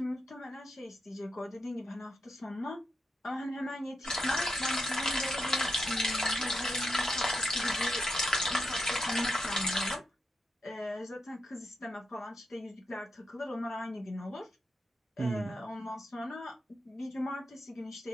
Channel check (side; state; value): both; normal; correlation 0.83